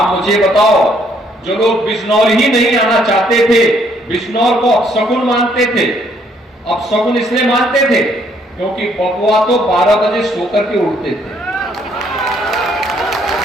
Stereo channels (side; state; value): both; normal; correlation 0.67